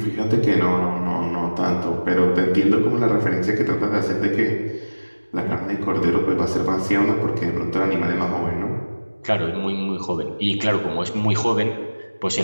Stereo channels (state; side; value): inverted; both; correlation -1.00